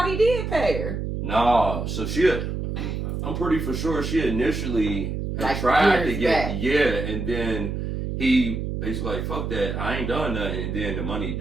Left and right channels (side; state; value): right; noise; hum, 3 dB below the sound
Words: he did pay her. Nah, so I'm pretty for sure she initially had tried to get, and then he basically like, fuck that, I ain't done nothing, and then the money